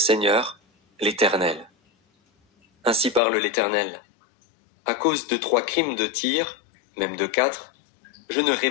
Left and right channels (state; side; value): drops out; right; at 3.2 s